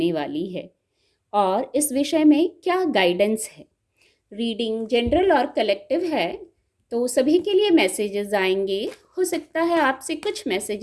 वाली है और इस विषय में क्या गाइडेंस है। रीडिंग जनरल और कलेक्टिव है, तो सभी के लिए मैसेजेस आएंगे। हो सकता है आपसे कुछ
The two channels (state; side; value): identical; both; correlation 1.00